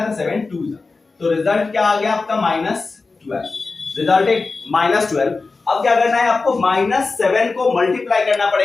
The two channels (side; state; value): right; quieter; 4.0 dB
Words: तो 7 2 जा, तो रिजल्ट क्या आ गया आपका -12, रिजल्ट है -12। अब क्या करना है आपको -7 को मल्टीप्लाई करना